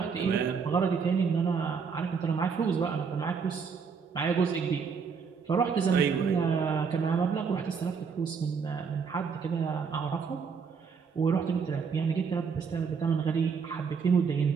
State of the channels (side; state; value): left; quieter; 5.9 dB